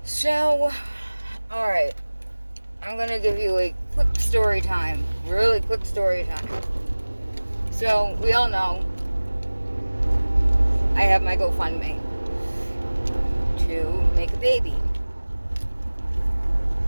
So, alright, I'm gonna give you a quick story time. Really quick story time. So, we all know I have my GoFundMe to make a baby.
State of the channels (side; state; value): both; inverted; correlation -1.00